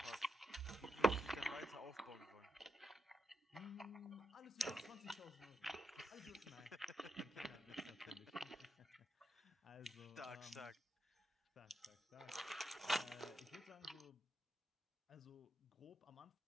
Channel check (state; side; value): normal; both; correlation 0.83